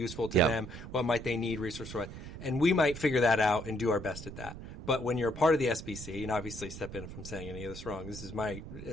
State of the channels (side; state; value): right; noise; rumble, 11 dB below the sound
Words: to them, what might they need, resource-wise, and we might figure that out and do our best at that. But when you're a part of the SBC, and obviously step in if I'm saying any of this wrong, this is